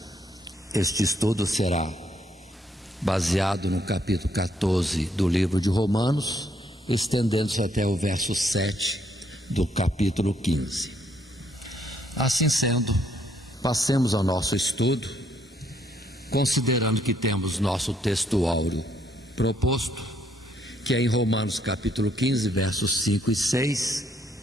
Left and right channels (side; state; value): both; normal; correlation 0.71